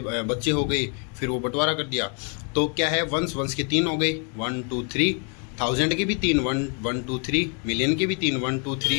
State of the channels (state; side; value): quieter; right; 38.8 dB